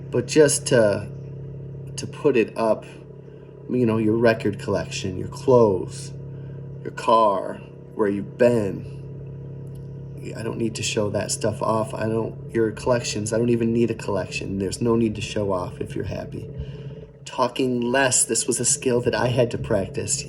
But just to put it up, your record collection, your clothes, your car, where you've been. I don't need to show that stuff off. Your collections, I don't even need a collection. There's no need to show off if you're happy. Talking less, this was a skill that I had to practice,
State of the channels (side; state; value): both; identical; correlation 1.00